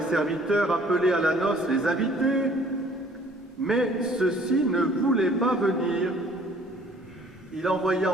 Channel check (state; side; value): normal; both; correlation 0.56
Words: serviteurs appeler à la noce les invités, mais ceux-ci ne voulaient pas venir. Il envoya